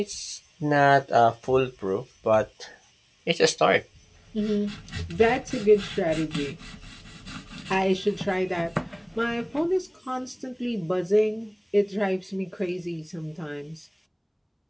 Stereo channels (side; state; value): both; identical; correlation 1.00